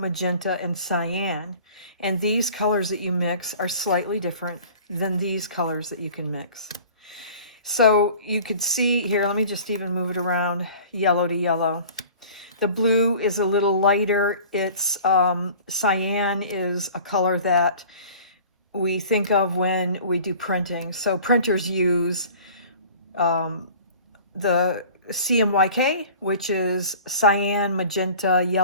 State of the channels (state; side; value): inverted; both; correlation -0.45